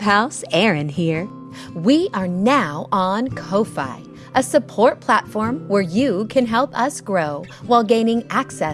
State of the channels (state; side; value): identical; both; correlation 1.00